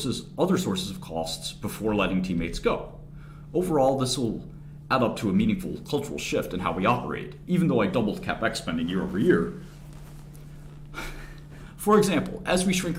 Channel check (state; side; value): identical; both; correlation 1.00